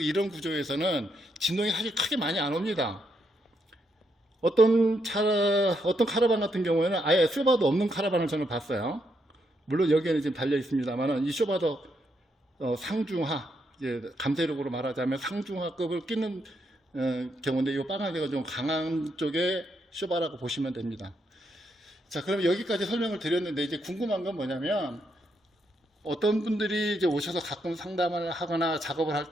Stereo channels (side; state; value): both; normal; correlation 0.78